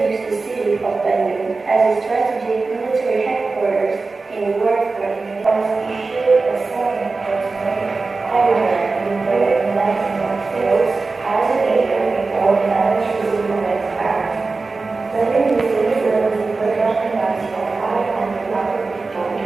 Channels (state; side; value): quieter; left; 3.9 dB